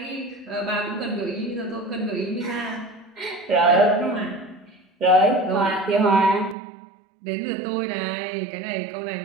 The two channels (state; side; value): drops out; left; at 6.6 s